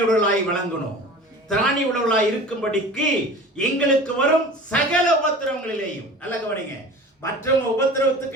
விளங்கணும். திராணி உடலாய் இருக்கும்படிக்கு எங்களுக்கு வரும் சகல உபத்திரவங்களிலேயும். நல்ல கவனிங்க, மற்றவங்க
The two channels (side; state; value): both; normal; correlation 0.39